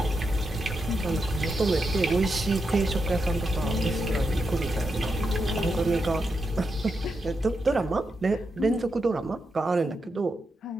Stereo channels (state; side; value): normal; both; correlation 0.85